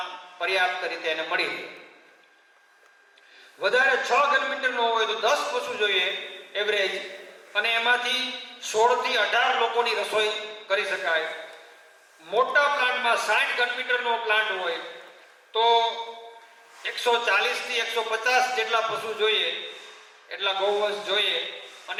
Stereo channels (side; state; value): both; identical; correlation 1.00